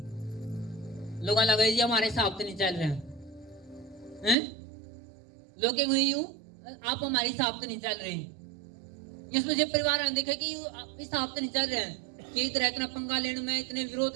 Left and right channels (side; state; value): left; drops out; at 4.4 s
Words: लोग लगा जी हमारे हिसाब से नहीं चल रहे हैं, लोग यूं आप हमारे हिसाब से नहीं चल रहे। यीशु मसीह परिवार ने देखा कि इस हिसाब से नहीं चल रहे हैं, कि इतना इतना पंगा लेने में, इतने